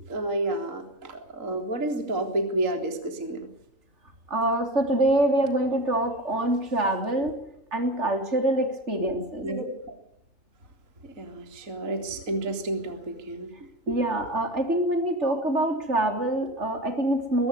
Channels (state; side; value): late; left; 3.8 ms